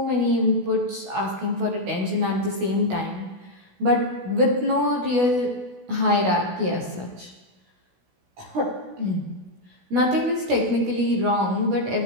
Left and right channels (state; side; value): late; left; 16 ms